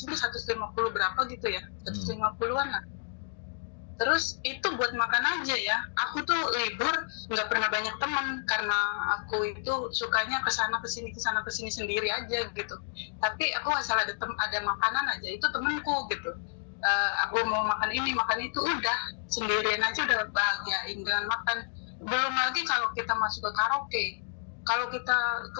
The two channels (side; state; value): right; silent; digital silence